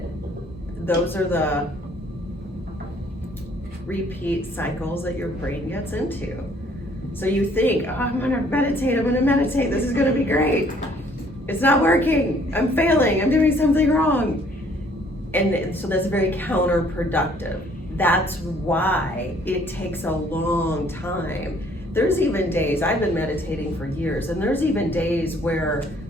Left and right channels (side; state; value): both; normal; correlation 0.61